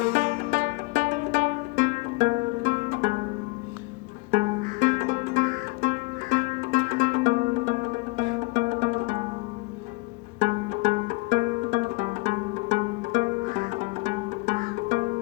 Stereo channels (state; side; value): quieter; right; 25.3 dB